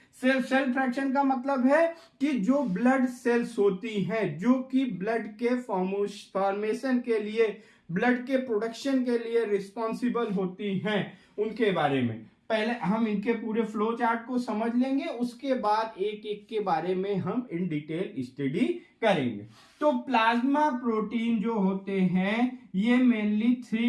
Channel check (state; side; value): identical; both; correlation 1.00